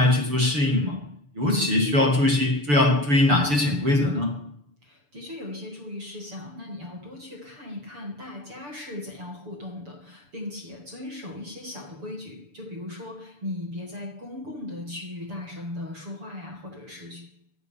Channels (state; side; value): late; left; 6.9 ms